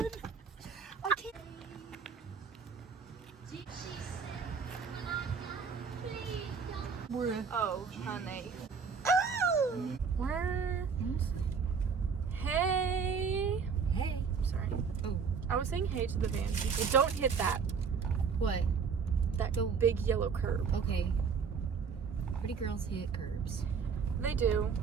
I can't. Oh, honey. Where? Hey. hey. Sorry. Oh. I was saying hey to the van people. Don't hit that. What? That big yellow curb. Okay. Pretty girls hit curbs. They do.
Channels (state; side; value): quieter; left; 5.9 dB